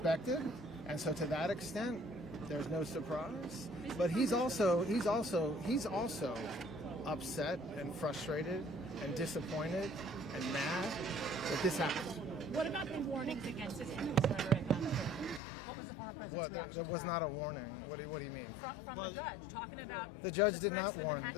and so to that extent, there's no surprise. But he's also upset and frustrated and disappointed and mad that this happened. What about the warnings against his rhetoric? What was the former president's reaction? It was not a warning. What do you mean? From the judge, talking about... The judge did not warn.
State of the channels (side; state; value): right; drops out; at 15.4 s